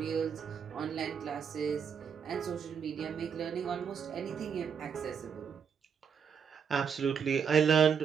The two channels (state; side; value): quieter; left; 7.1 dB